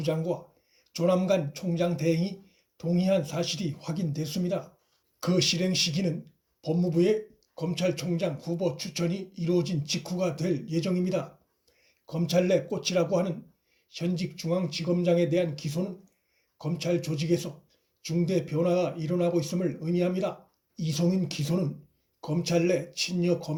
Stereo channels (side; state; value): both; identical; correlation 1.00